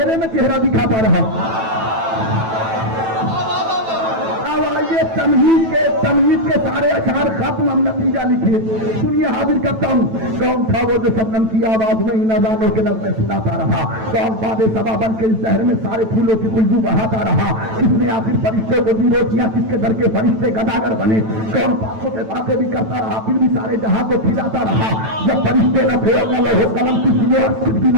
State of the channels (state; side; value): late; left; 9.1 ms